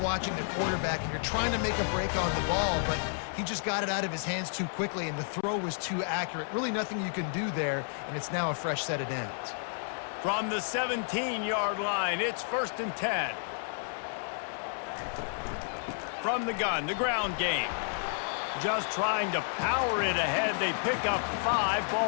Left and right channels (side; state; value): right; silent; 56 dB below the other